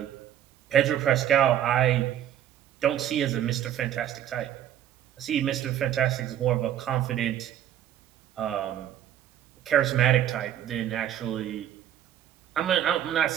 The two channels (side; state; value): left; quieter; 10.9 dB